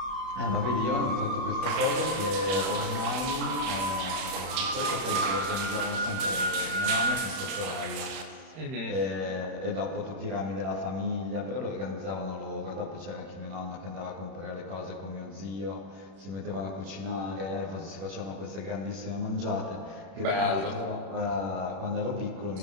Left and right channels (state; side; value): late; left; 31 ms